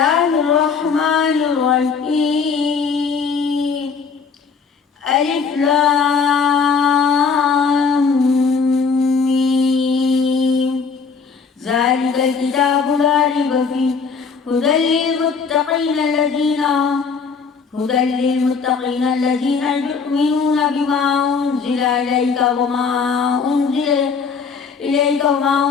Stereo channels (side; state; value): right; quieter; 5.4 dB